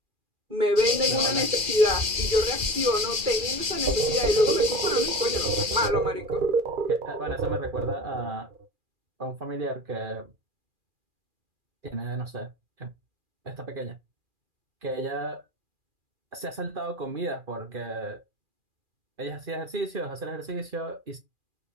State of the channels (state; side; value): late; left; 2.4 ms